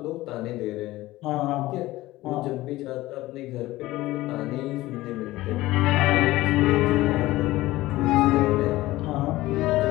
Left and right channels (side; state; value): right; quieter; 17.6 dB